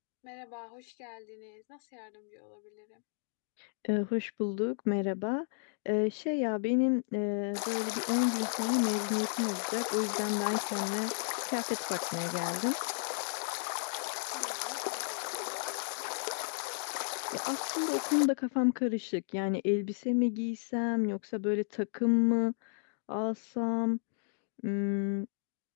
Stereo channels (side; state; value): right; silent; digital silence